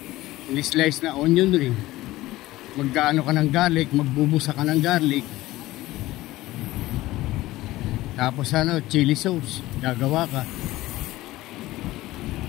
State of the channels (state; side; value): quieter; right; 17.4 dB